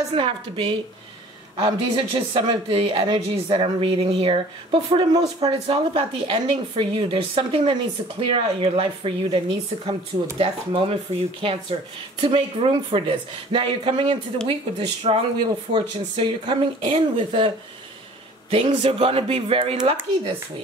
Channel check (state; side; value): normal; both; correlation 0.49